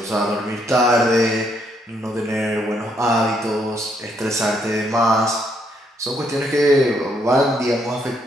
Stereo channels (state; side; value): normal; both; correlation 0.73